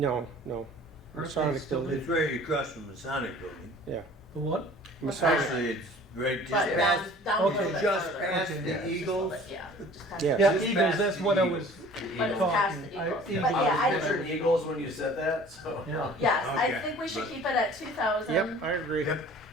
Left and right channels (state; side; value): normal; both; correlation 0.48